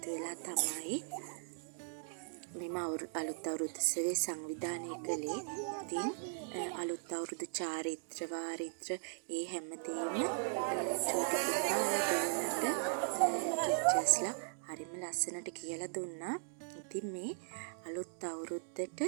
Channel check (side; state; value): left; silent; digital silence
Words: වෙලා තමයි මෙම අලුත් අවුරුදු උත්සවය සංවිධානය කළේ. ඉතින් අලුත් අවුරුදු චාරිත්‍ර වාරිත්‍ර ඒ හැමදේම චූටි පුතාලා දෙන්නට ටීචර්ස්ලා හරිම ලස්සනට කියලා දුන්නා. ඉතින් මේ අලුත් අවුරුද්දට